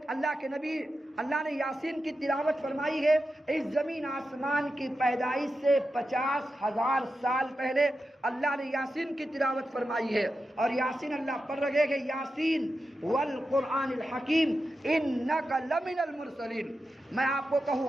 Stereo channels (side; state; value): both; normal; correlation 0.90